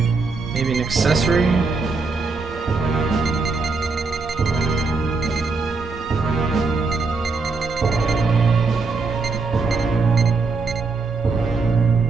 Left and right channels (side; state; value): left; quieter; 4.1 dB